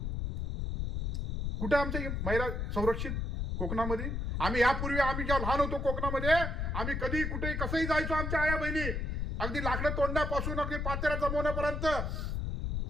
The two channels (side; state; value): left; noise; rumble, 2 dB below the sound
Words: कुठे आमच्या महिला संरक्षित कोकणामध्ये? आम्ही यापूर्वी आम्ही जेव्हा लहान होतो कोकणामध्ये, आम्ही कधी कुठेही कसंही जायचो. आमच्या आया बहिणी अगदी लाकडं तोंडापासून अगदी पातेऱ्या जमवण्यापर्यंत.